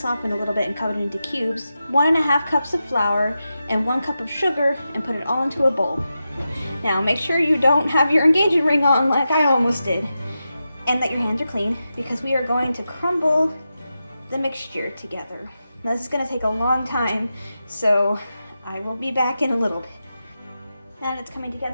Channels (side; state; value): both; inverted; correlation -0.90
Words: a little bit and cut it into cubes. 1.5 cups of flour and 1 cup of sugar and put it all into a bowl. Now make sure you don't have your engagement ring on like I almost did. And that your hands are clean because we are going to crumble the mixture together. Now, this is going to take a long time, so I will be back in a little bit. Now that it's coming